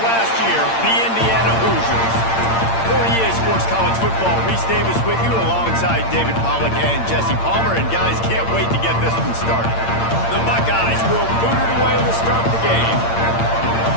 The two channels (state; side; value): late; right; 8.8 ms